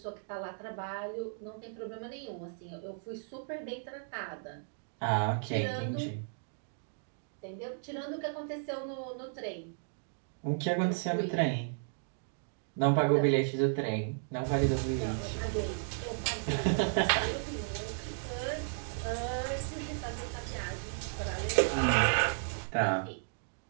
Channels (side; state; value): left; silent; digital silence